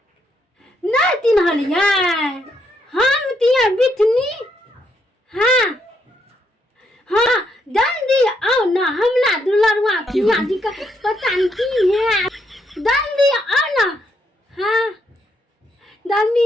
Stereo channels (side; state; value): both; normal; correlation 0.76